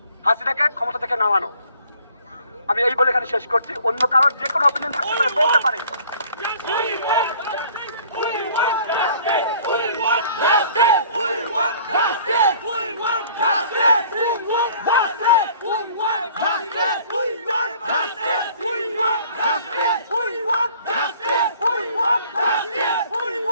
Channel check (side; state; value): both; inverted; correlation -0.53